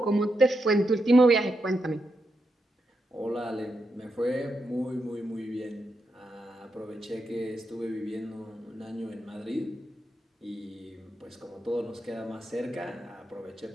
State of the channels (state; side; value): normal; both; correlation 0.84